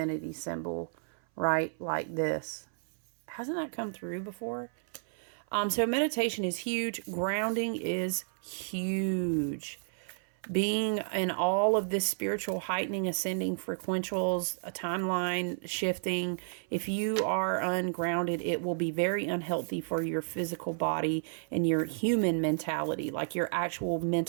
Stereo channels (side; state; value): left; silent; 57 dB below the other